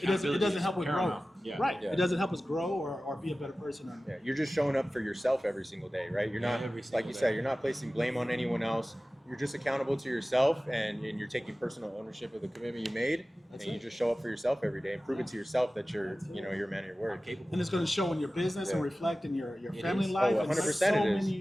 doesn't Accountability help is with growth. paramount. Yeah. Right. Yeah. It doesn't help us grow or be a better person. Or, Yeah, you're just showing up for yourself every single day, right? You're not, Every like single you day. said, you're not placing blame on anyone else. You're just accountable to yourself, and you're taking personal ownership of the commitment you made, That's and you it. just show up for yourself every day and prove it to yourself that you're, you know, you're a man of your I'm word. capable. and it's going to show in your business and Yeah. reflect in your It family is. life. Oh, and 100% so it is.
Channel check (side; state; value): both; normal; correlation 0.96